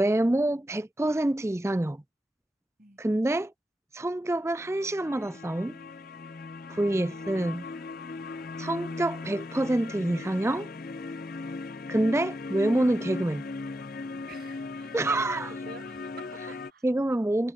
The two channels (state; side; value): normal; both; correlation 0.87